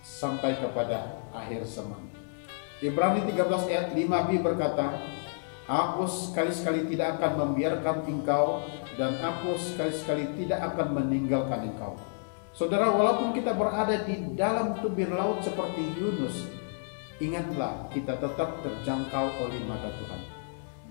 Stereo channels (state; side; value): silent; right; 58 dB below the other